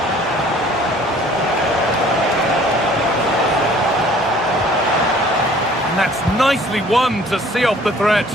And that's nicely won to see off the threat.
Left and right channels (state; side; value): normal; both; correlation 0.54